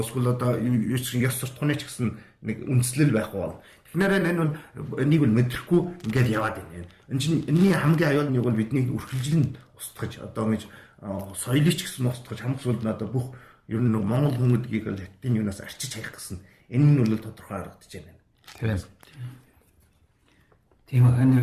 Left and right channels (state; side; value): identical; both; correlation 1.00